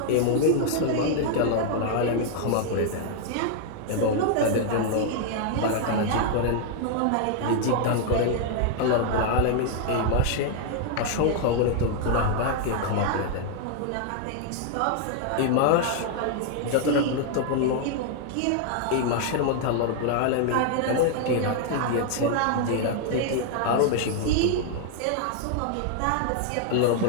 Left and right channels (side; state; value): both; different; correlation 0.00